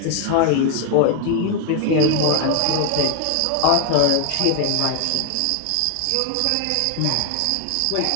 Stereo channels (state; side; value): different; both; correlation 0.00